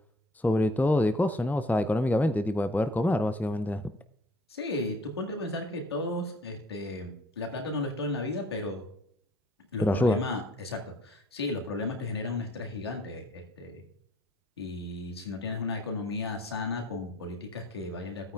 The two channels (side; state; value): both; normal; correlation 0.58